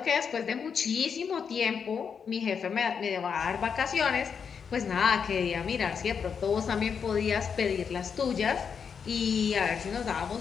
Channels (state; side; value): quieter; right; 6.6 dB